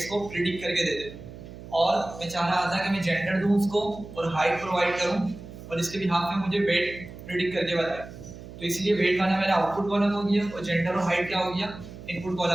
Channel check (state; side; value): noise; right; hum, 14 dB below the sound